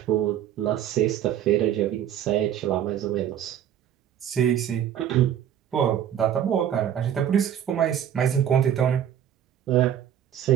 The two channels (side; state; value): left; quieter; 10.1 dB